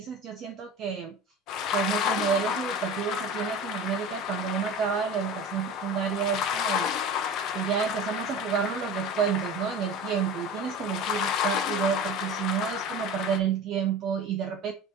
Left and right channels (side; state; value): both; normal; correlation 0.34